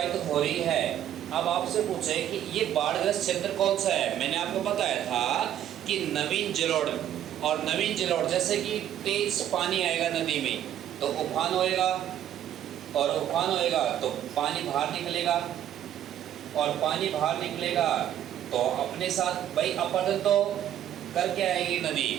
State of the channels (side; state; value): left; quieter; 11.1 dB